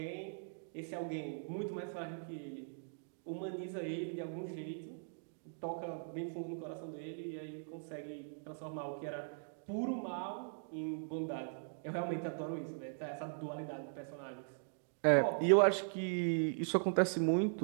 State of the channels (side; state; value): left; silent; digital silence